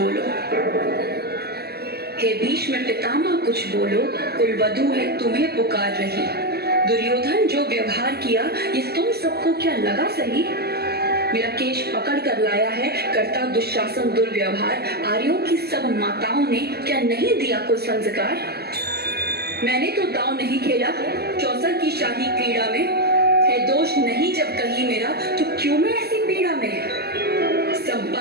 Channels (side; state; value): left; late; 0.46 ms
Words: हे भीष्म पितामह कुछ बोलो, कुलवधू है तुम्हें पुकार रही। दुर्योधन जो व्यवहार किया ये तुम सबको क्या लगा सही? मेरा केश पकड़ कर लाया है करता दुशासन दुर्व्यवहार, आर्यों की सब माताओं ने क्या नहीं दिया कोई संस्कार? मैंने तो दांव नहीं खेला चौसर की शाही क्रीड़ा में, है दोष नहीं जब कहीं मेरा तो क्यों मैं ऐसी पीड़ा में?